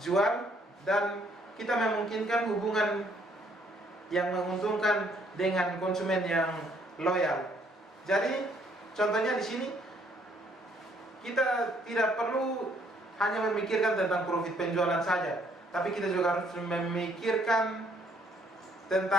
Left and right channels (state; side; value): normal; both; correlation 0.66